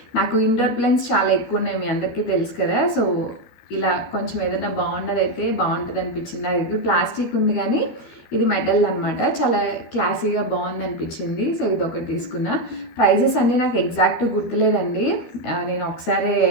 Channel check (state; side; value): late; right; 13 ms